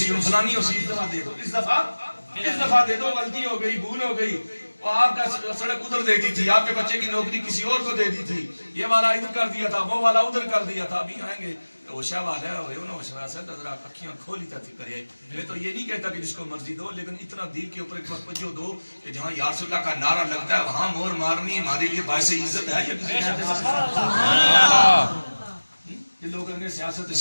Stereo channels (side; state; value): both; inverted; correlation -1.00